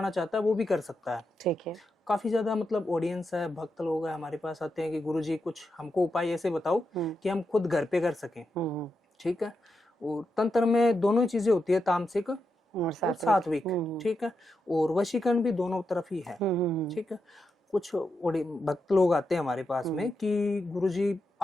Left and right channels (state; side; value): normal; both; correlation 0.86